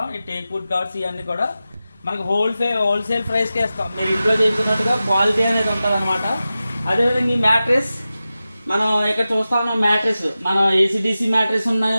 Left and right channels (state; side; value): inverted; both; correlation -0.94